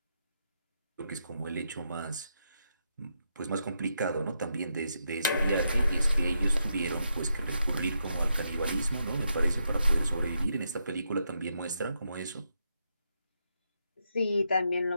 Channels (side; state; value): both; inverted; correlation -0.82